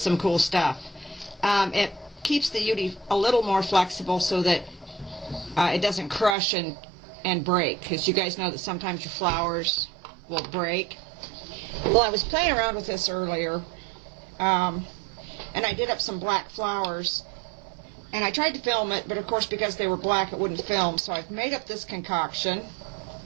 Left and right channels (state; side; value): drops out; left; at 6.4 s